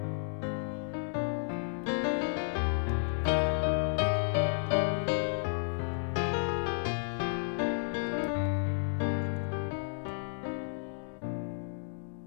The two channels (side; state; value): right; silent; digital silence